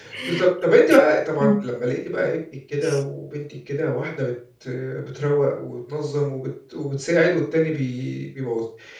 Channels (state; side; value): identical; both; correlation 1.00